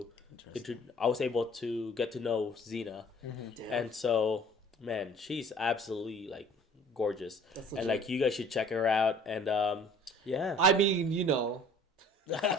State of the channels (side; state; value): both; normal; correlation 0.51